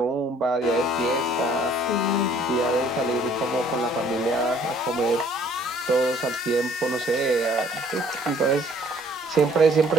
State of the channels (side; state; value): both; normal; correlation 0.59